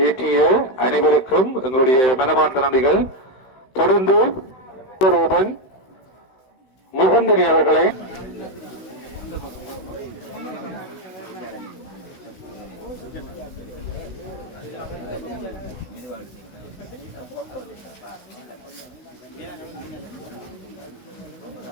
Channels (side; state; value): right; late; 16 ms